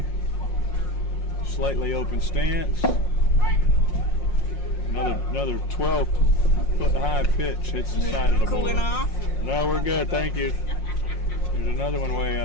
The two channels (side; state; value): right; late; 5.6 ms